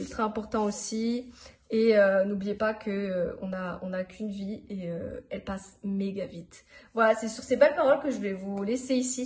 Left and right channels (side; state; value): both; identical; correlation 1.00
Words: ultra important aussi. Et n'oubliez pas que on a qu'une vie et elle passe méga vite. Voilà, c'est sur ces belles paroles que je vais vous laisser ici